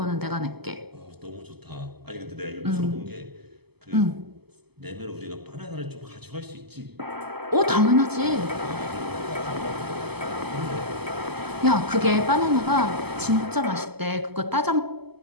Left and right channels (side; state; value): left; late; 0.97 ms